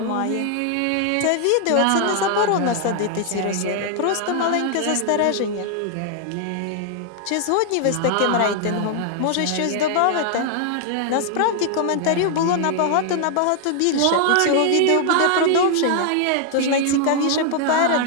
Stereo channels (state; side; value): different; both; correlation 0.00